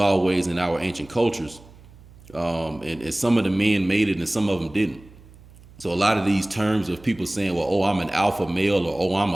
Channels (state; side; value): noise; right; hum, 23 dB below the sound